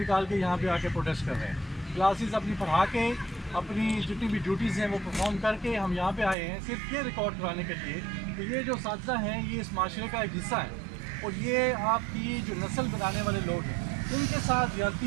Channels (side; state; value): left; drops out; at 6.4 s